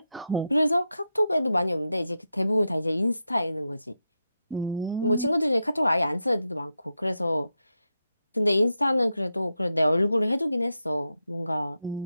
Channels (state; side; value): inverted; both; correlation -0.86